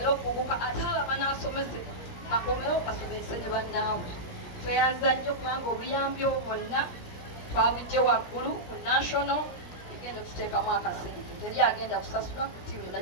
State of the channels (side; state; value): right; late; 16 ms